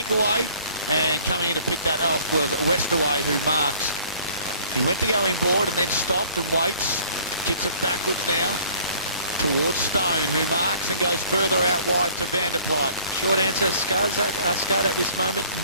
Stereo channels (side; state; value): both; inverted; correlation -0.54